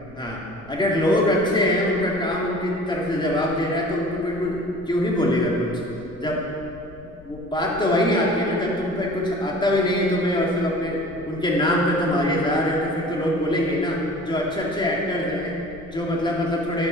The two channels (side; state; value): left; noise; rumble, 21 dB below the sound